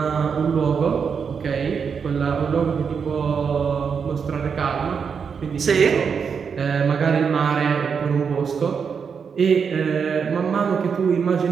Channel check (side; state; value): left; quieter; 6.3 dB